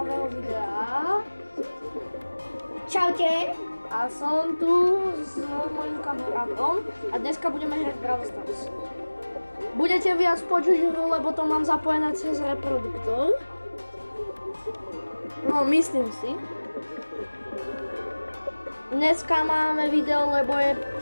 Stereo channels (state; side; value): inverted; both; correlation -1.00